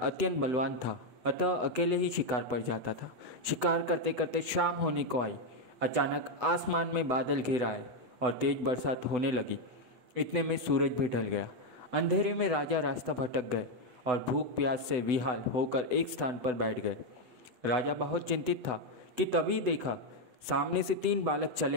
अत्यंत बलवान था, अतः अकेले ही शिकार पर जाता था। शिकार करते करते शाम होने को आई। अचानक आसमान में बादल घिर आए और तेज बरसात होने लगी। इतने में सूरज भी ढल गया। अंधेरे में राजा रास्ता भटक गए और भूख प्यास से विहाल होकर एक स्थान पर बैठ गए। राजा बहुत चिंतित था कि तभी देखा सामने से 3 बालक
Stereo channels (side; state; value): left; late; 8.0 ms